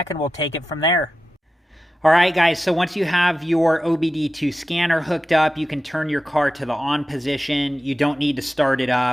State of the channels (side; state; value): both; normal; correlation 0.92